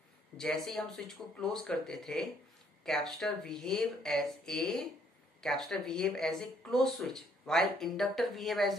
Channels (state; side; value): normal; both; correlation 0.66